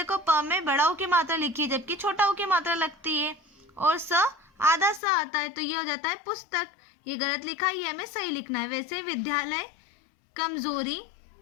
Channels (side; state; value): right; drops out; at 5.0 s